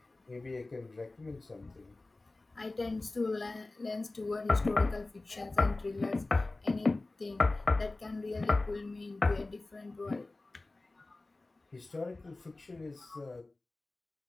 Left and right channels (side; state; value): right; quieter; 3.1 dB